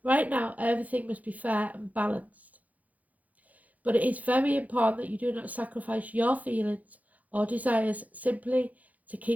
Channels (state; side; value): late; left; 0.076 ms